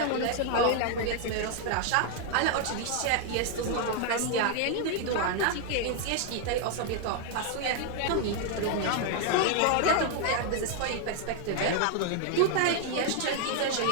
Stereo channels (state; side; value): different; both; correlation 0.00